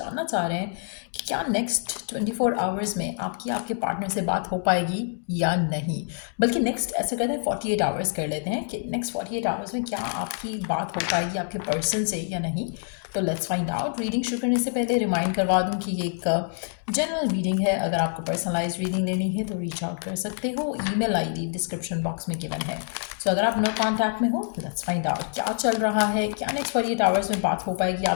चाह रहे हैं कि क्या नेक्स्ट 24 आवर्स में आपकी आपके पार्टनर से बात हो पाएगी या नहीं। बल्कि नेक्स्ट ऐसे करते हैं 48 आवर्स कर लेते हैं कि नेक्स्ट 48 आवर्स में क्या आपकी बात हो पाएगी आपके पर्सन से या नहीं। तो लेट्स फाइंड आउट। रीडिंग शुरू करने से पहले रिमाइंड करवा दूं कि ये एक जनरल रीडिंग है। अगर आपको पर्सनलाइज रीडिंग लेनी है तो रीच आउट कर सकते हो। ईमेल आईडी डिस्क्रिप्शन बॉक्स में गिवन है। सो अगर आप नो कॉन्टैक्ट में हो, लेट्स फाइंड आउट क्या चल रहा है, क्या नेक्स्ट 48 आवर्स में बात हो पाएगी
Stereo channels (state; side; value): silent; right; 61 dB below the other